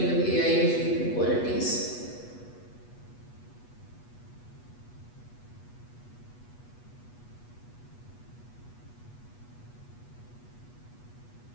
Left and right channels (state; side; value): late; right; 8.3 ms